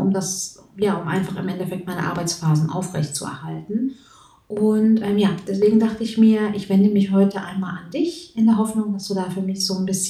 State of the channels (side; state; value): both; identical; correlation 1.00